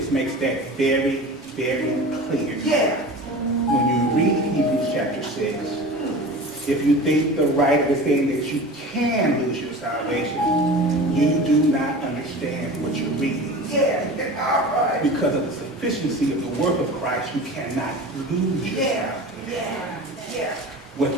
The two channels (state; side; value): normal; both; correlation 0.35